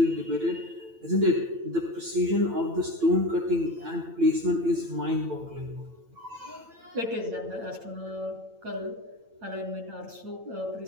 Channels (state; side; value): late; left; 8.9 ms